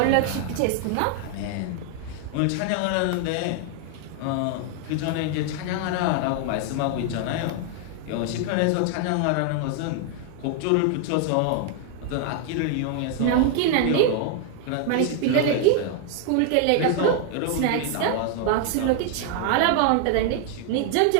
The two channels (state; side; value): different; both; correlation 0.00